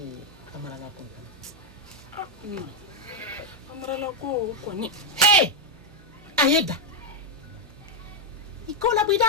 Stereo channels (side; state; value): right; noise; hum, 22 dB below the sound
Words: kamara la ko amara la ko ni hey ayeda ikola